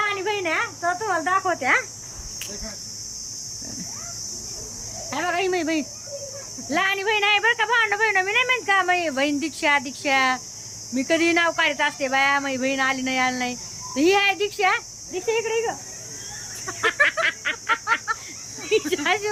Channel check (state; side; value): identical; both; correlation 1.00